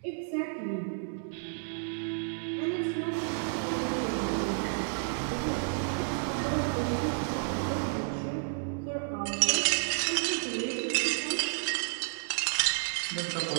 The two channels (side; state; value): left; silent; digital silence